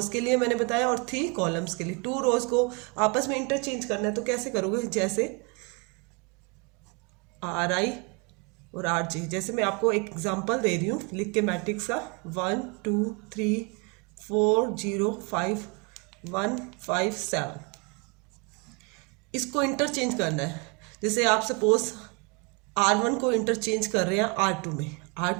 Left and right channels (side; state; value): left; quieter; 31.5 dB